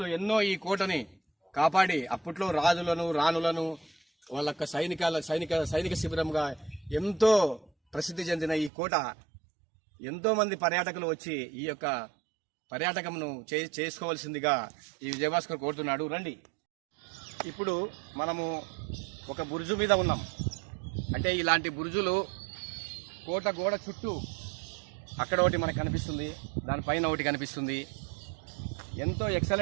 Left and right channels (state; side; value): drops out; left; at 8.7 s